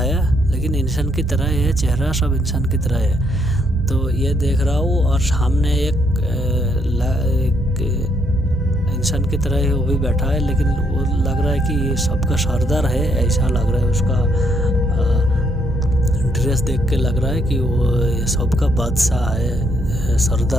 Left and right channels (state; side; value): normal; both; correlation 0.73